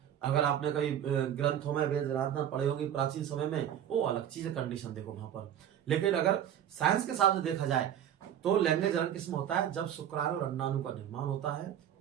अगर आपने कई ग्रंथों में वेद आराधना पढ़े होंगे प्राचीन समय में, वो अलग चीज है, कंडीशन देखो वहां पर। लेकिन अगर साइंस के हिसाब से देखा जाए तो लैंगिक जनन किसमें होता है, जब शुक्राणु और अंडाणु का निर्माण होता है,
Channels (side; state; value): left; quieter; 10.1 dB